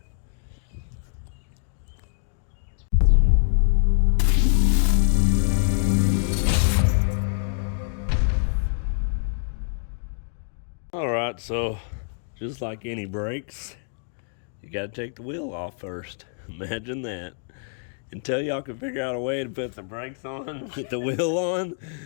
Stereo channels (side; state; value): right; silent; digital silence